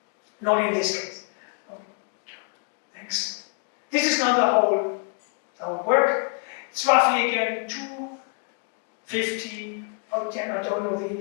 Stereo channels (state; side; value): quieter; right; 38.0 dB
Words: Not in this case. Okay. Thanks. This is not the our work. It's roughly again 250, oh damn, I don't know the